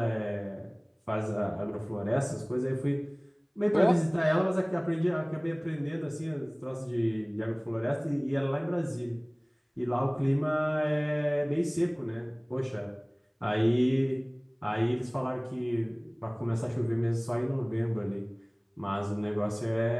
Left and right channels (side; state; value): both; identical; correlation 1.00